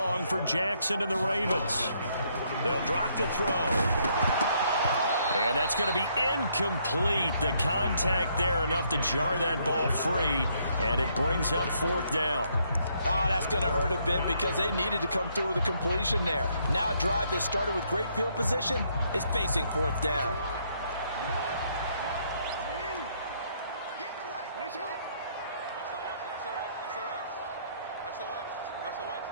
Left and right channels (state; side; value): inverted; both; correlation -0.71